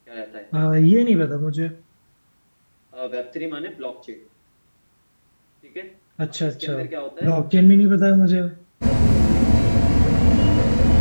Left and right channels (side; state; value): both; inverted; correlation -1.00